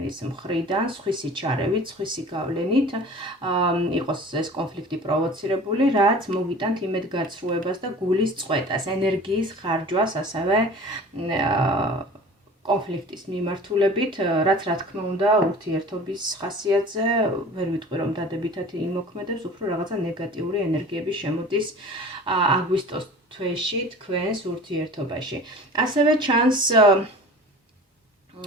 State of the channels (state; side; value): normal; both; correlation 0.41